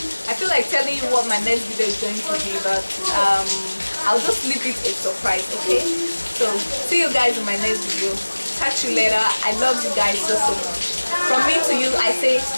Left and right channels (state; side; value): inverted; both; correlation -1.00